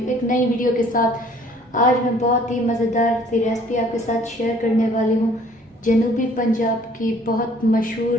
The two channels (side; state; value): both; normal; correlation 0.56